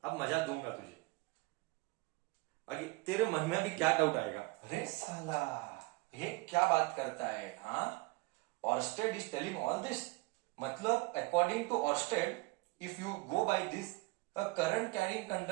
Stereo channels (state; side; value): quieter; left; 23.9 dB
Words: अब मजा दूंगा तुझे. आगे तेरे मन में भी क्या डाउट आएगा? अरे साला, ये क्या बात करता है? हाँ, Oersted is telling all this. मतलब according to Oersted, if you go by this, a current carrying